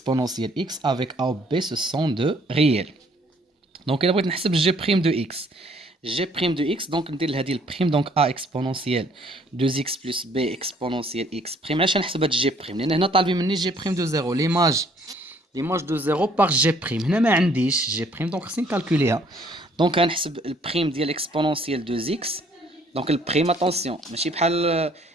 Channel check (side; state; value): both; normal; correlation 0.62